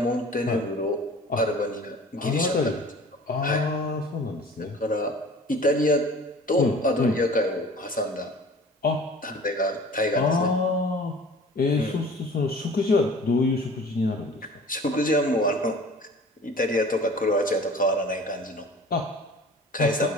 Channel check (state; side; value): normal; both; correlation 0.44